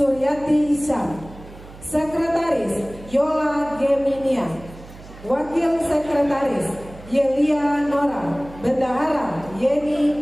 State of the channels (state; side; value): noise; right; hum, 18 dB below the sound